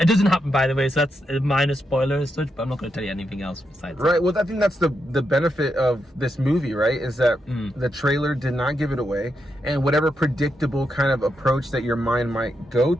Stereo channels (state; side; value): normal; both; correlation 0.83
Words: doesn't happen, by the way, so that's a minor spoiler as such, but I'm not going to tell you anything else besides that. Well, I think that's the benefit of this movie, right? Is that the trailer did not give it away, and whatever predictable kind of approach that your mind might go